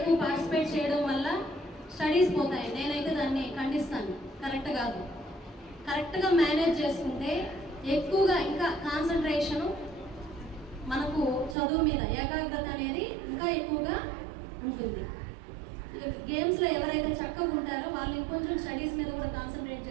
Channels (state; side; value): drops out; left; at 11.6 s